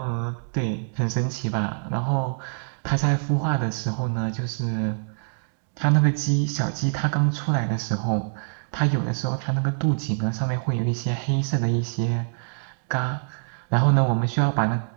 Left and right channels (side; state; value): left; silent; digital silence